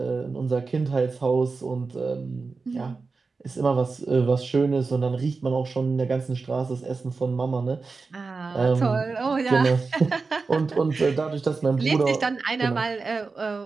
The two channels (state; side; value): quieter; left; 4.3 dB